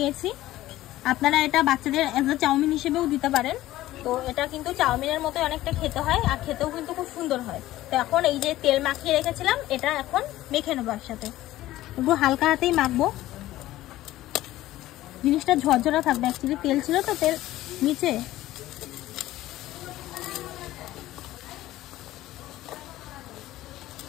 আপনারা এটা বাচ্চাদের এজ আ চাউমিন হিসেবেও দিতে পারেন। তো এটা কিন্তু চাউমিনের মতো অনেকটা খেতে হয়, আর খেতেও কিন্তু খুব সুন্দর হয়। তো এখন এই যে তেল মাখিয়ে রেখেছিলাম, এটা এখন মেখে নেবো একসাথে। একটু হালকা হাতেই মাখবো, জিনিসটা ঝরঝরা থাকবে। অ্যাকচুয়ালি তেল ছিল তো তেল নিচে।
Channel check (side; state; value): right; quieter; 15.5 dB